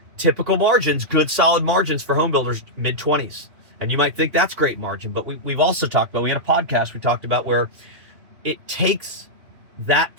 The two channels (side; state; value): left; late; 2.9 ms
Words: typical margins, good solid margins for home builders, mid-20s. And you might think that's great margin, but we've also talked about, we had a podcast we talked about where it takes that